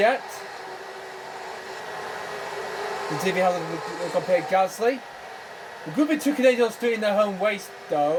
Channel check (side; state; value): both; identical; correlation 1.00